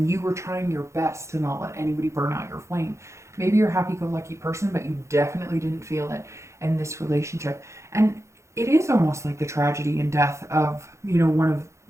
you were trying your best to not let anybody burn out your flame. Maybe you're a happy-go-lucky person, but you definitely didn't feel it in this relationship. And it is almost like the tragedy and death of, you know, one of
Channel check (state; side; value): late; left; 0.14 ms